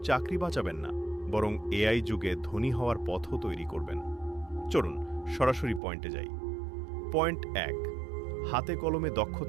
চাকরি বাঁচাবেন না, বরং এআই যুগে ধনী হওয়ার পথও তৈরি করবেন। চলুন সরাসরি পয়েন্টে যাই। পয়েন্ট 1, হাতে কলমে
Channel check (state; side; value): drops out; left; at 5.8 s